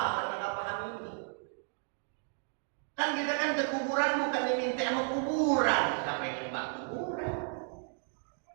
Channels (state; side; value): silent; left; 55 dB below the other